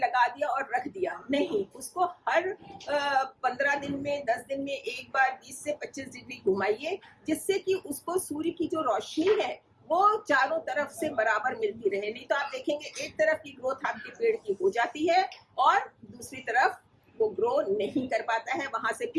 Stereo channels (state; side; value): identical; both; correlation 1.00